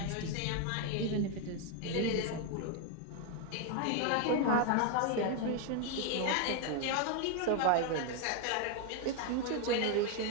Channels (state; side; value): different; both; correlation 0.01